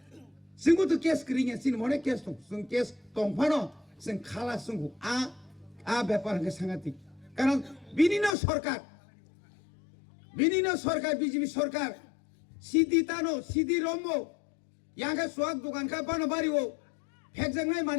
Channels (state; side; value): drops out; right; at 8.3 s